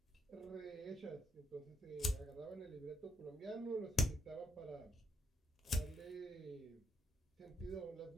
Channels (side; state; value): both; normal; correlation 0.74